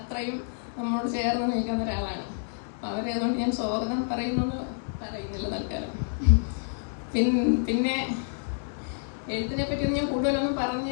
നമ്മളോട് ചേർന്ന് നിൽക്കുന്ന ഒരാളാണ്. അപ്പം അവരെ അതുകൊണ്ട് ഞാൻ സ്വാഗതം പറയുന്നില്ല തൽക്കാലം. പിന്നെ എഴുത്തിനെ പറ്റിയൊന്നും ഞാൻ കൂടുതലൊന്നും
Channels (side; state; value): right; silent; digital silence